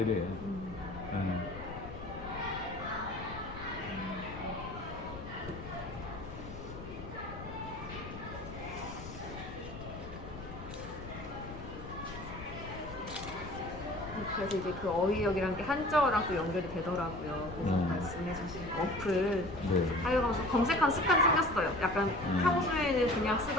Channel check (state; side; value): noise; left; rumble, 11 dB below the sound